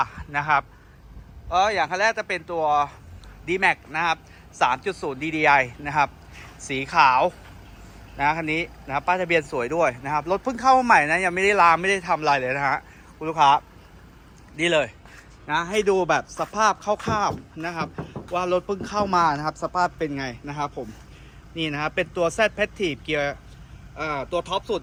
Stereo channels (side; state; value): both; identical; correlation 1.00